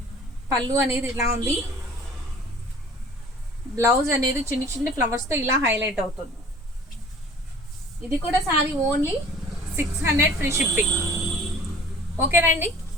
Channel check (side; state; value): both; normal; correlation 0.47